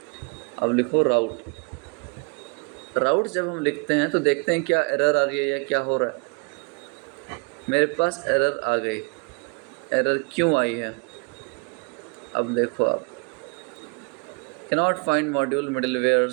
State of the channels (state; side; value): quieter; left; 34.4 dB